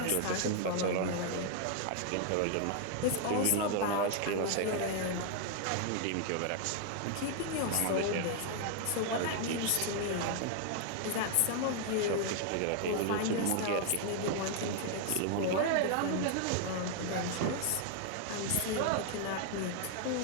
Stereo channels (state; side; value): different; both; correlation 0.00